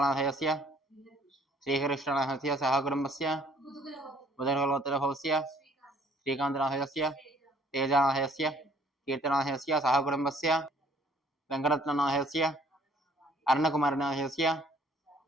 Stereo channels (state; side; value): normal; both; correlation 0.59